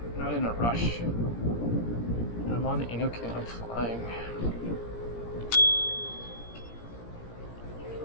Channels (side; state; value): right; late; 17 ms